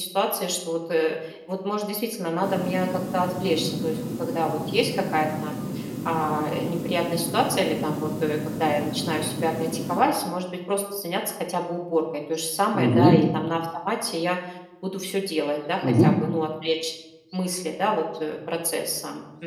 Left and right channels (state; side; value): identical; both; correlation 1.00